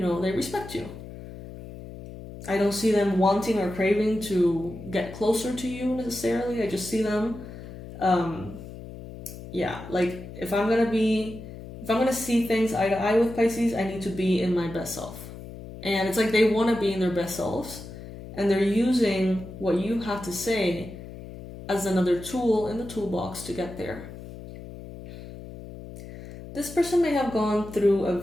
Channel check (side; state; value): left; noise; hum, 13 dB below the sound